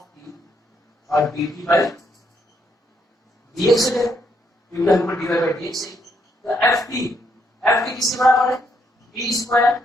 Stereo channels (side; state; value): both; normal; correlation 0.74